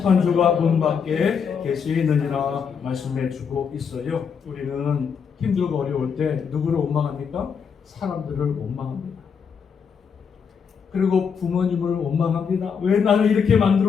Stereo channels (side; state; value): right; quieter; 6.5 dB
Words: 문 밖에 계시느니라 말씀해 주고 있어요. 우리는 힘들고 어려울 때 누구를 원망합니까? 사람들을 원망합니다. 그리고 부모님을 원망합니다. 왜 나를 이렇게